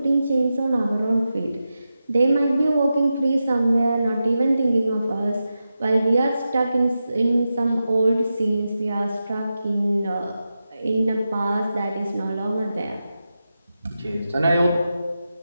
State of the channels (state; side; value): inverted; both; correlation -0.91